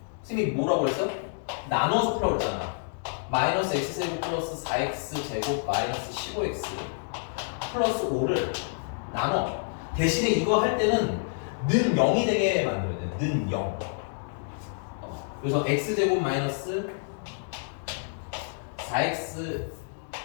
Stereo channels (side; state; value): right; silent; digital silence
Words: 선생님이 뭐라고 그랬어? 나눠서 풀라고 했잖아. 마이너스 x제곱 플러스 4x제곱 마이너스 15x 플러스 5를 나눠. 대신에 이거 할 때는 는 0이 되게 만들어야 돼. 는 0. 그래서 x제곱 마이너스 4x